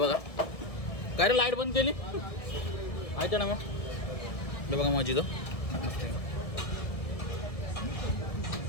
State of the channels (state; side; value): late; right; 1.6 ms